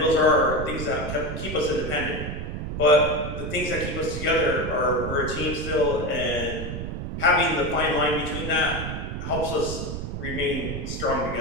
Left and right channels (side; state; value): right; noise; rumble, 5 dB below the sound